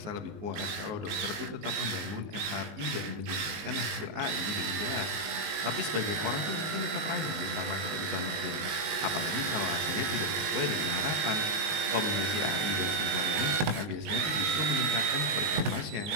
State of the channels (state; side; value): late; left; 19 ms